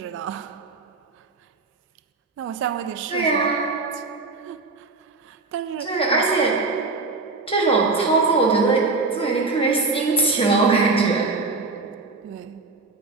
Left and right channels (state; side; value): quieter; left; 3.7 dB